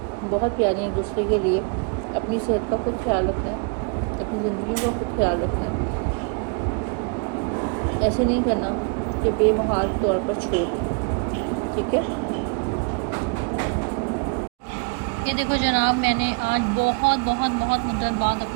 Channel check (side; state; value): left; quieter; 36.2 dB